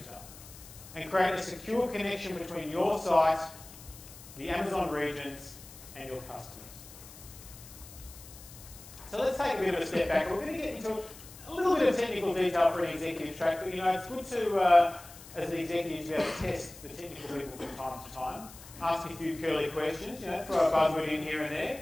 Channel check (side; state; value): left; noise; hiss, 18 dB below the sound